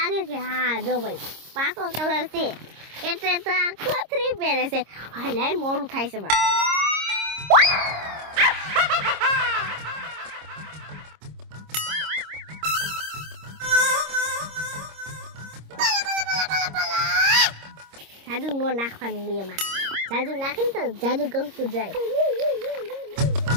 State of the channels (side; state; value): left; late; 26 ms